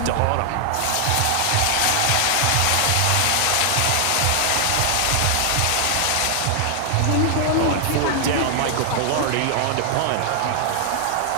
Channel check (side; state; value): both; different; correlation 0.00